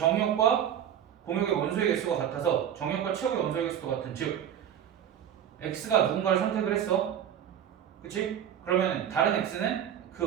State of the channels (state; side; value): quieter; left; 9.6 dB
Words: 공역의 원소의 개수가 같아서 정역과 치역의 원소의 개수도 같은 즉 x가 누군가를 선택을 했어. 그치? 그러면 다른 x는